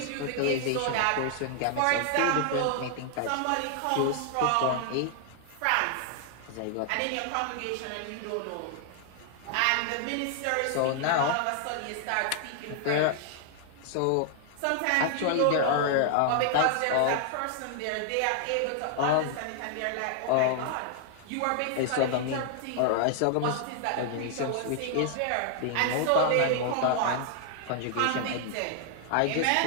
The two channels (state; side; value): different; both; correlation 0.00